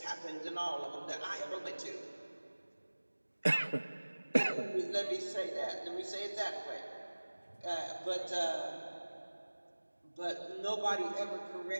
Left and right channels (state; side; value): inverted; both; correlation -1.00